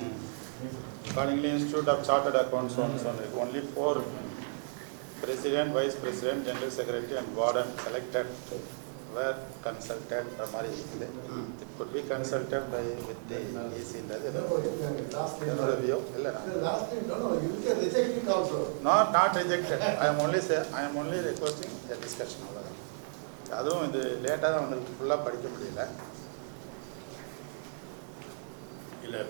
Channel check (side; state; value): left; silent; digital silence